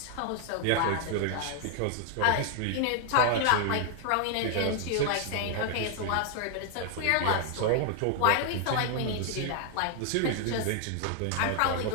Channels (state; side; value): different; both; correlation 0.00